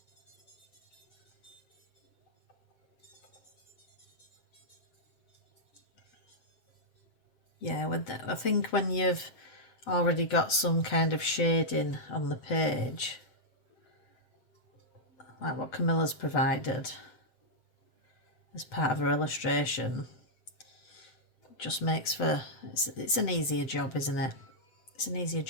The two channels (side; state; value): right; late; 7.9 ms